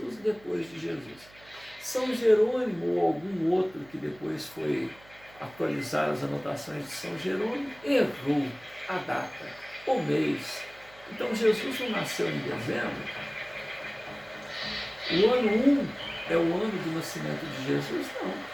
e depois de Jesus. São Jerônimo ou algum outro que depois foi atualizar as anotações de São Jerônimo, errou a data, o mês. Então Jesus não nasceu em dezembro. O ano 1 é o ano do nascimento de Jesus? Não.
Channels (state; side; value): noise; right; hum, 24 dB below the sound